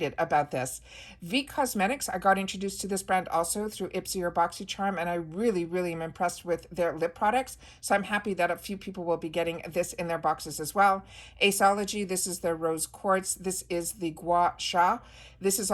about this. V Cosmetics, I got introduced to this brand also through IPSY or BoxyCharm, and I really am impressed with their lip products. So I'm happy that a few people will be getting this in their boxes as well. Aceology, this is their Rose Quartz. This is the Gua Sha. This is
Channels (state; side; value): identical; both; correlation 1.00